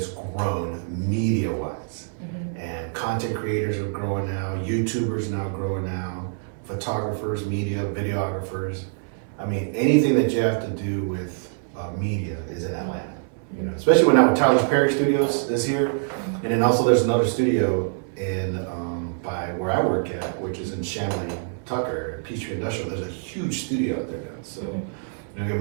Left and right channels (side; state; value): left; silent; 62 dB below the other